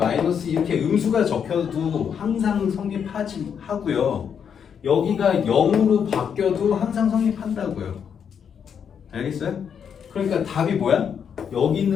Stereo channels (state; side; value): quieter; right; 7.5 dB